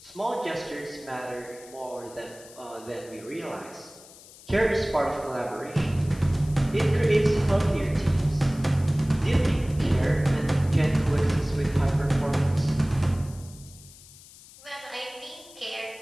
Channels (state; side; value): noise; left; hiss, 21 dB below the sound